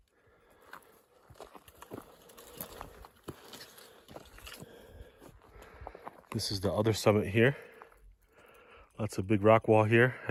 This is the other summit here. Lots of big rock wall here.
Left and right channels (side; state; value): both; identical; correlation 1.00